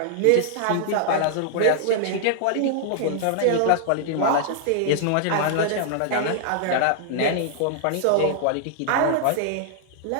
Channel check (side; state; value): both; different; correlation -0.01